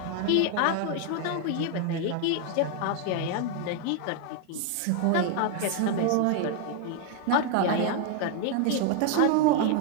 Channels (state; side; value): different; both; correlation 0.00